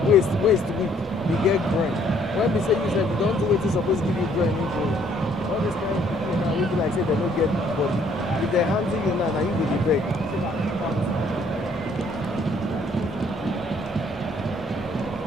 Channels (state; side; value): normal; both; correlation 0.63